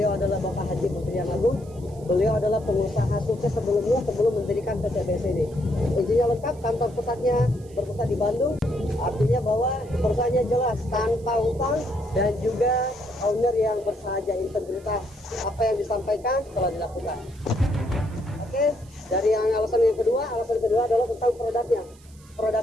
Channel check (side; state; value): right; noise; hiss, 27 dB below the sound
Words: adalah Bapak Haji Muhyiddin Agung. Beliau adalah pengusaha sukses sebelum mendirikan PT BES ini. Izinnya lengkap, kantor pusatnya berpusat di Bandung. Artinya bahwa perusahaannya jelas, tanpa utang dan juga owner yang bersahaja, integritas. Apa yang disampaikan telah dilakukan. Oke, dari alasan kedua adalah tentang produknya.